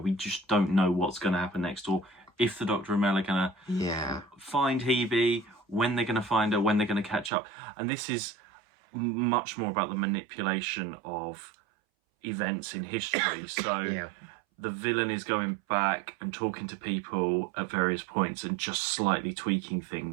just don't know what's going to happen next, or if the Doctor and Mel are going to find Hebe, when they're going to find her, when they're going to catch up. And this is much more about the manipulation of events in history. So the villain is going back and talking to people at various points and just slightly tweaking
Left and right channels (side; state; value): left; drops out; at 7.3 s